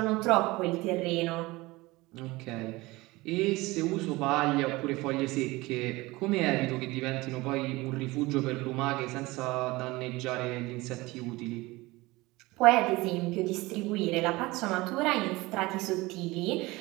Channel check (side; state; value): left; quieter; 21.2 dB